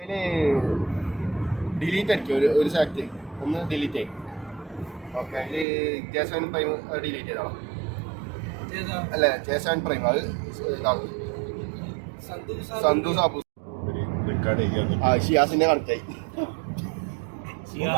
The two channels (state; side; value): drops out; left; at 5.7 s